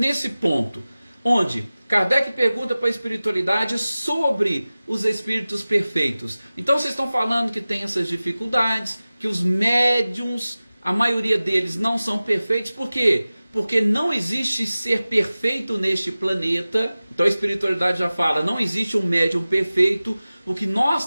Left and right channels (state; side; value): inverted; both; correlation -0.97